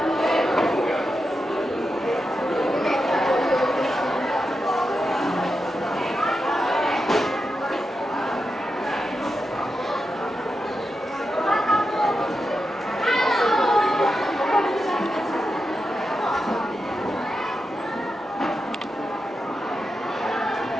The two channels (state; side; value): normal; both; correlation 0.88